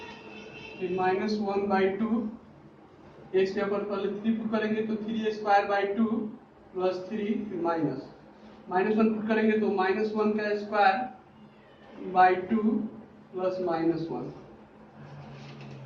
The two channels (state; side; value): identical; both; correlation 1.00